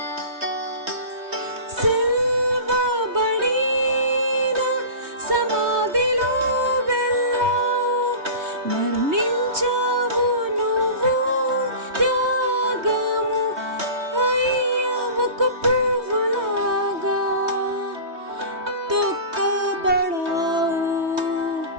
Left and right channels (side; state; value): left; late; 3.2 ms